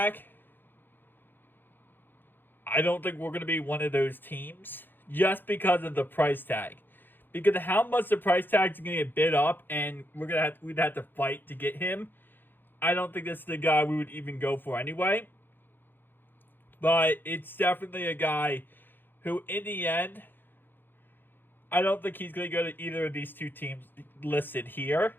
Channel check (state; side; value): late; right; 0.095 ms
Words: I don't think we're going to be one of those teams just because of the price tag. Because of how much the price tag is going to get bid up and we'd have to fight to get him. I don't think this is the guy we would even go for anyway. But it's definitely a guy who, in the end, I don't think he's going to go to either of these 2 teams listed here.